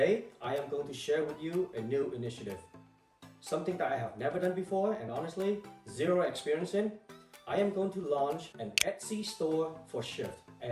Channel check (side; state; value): both; identical; correlation 1.00